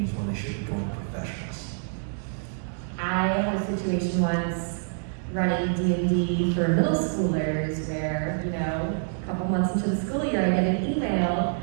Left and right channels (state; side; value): silent; left; digital silence